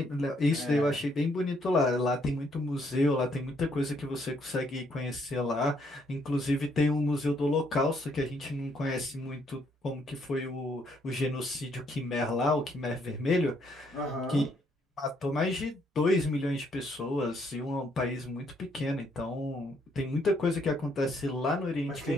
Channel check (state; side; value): normal; both; correlation 0.70